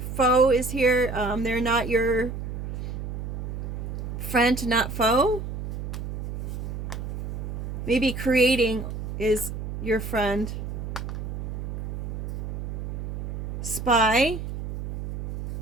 Foe is here. They're not your friend, not foe. Maybe creating is your friend. Spy.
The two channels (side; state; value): right; noise; hum, 6 dB below the sound